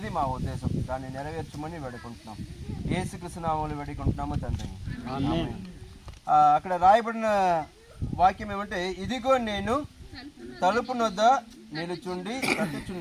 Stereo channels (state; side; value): identical; both; correlation 1.00